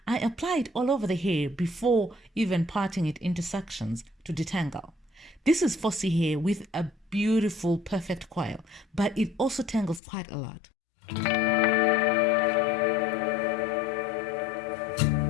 I apply it all over the hair before even parting it into sections to detangle. This is fussy hair with a beautiful, perfect coil, but it also tangles quite a lot.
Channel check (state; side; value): drops out; right; at 10.0 s